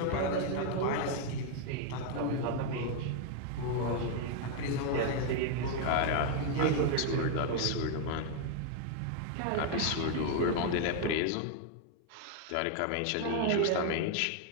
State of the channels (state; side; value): different; both; correlation 0.00